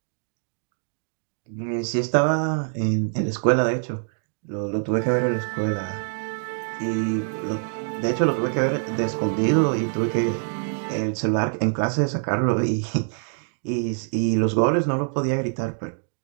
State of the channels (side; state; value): left; silent; 62 dB below the other